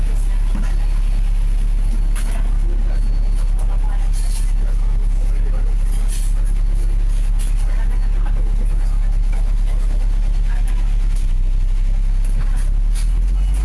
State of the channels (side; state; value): both; identical; correlation 1.00